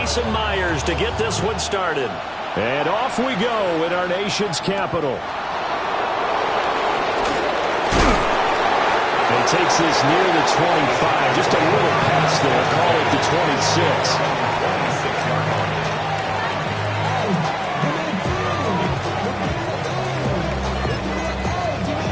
Myers, to get this one started. And off we go in our nation's capital. And takes this near the 25. Just a little pass there. Call it the 26.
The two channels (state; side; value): identical; both; correlation 1.00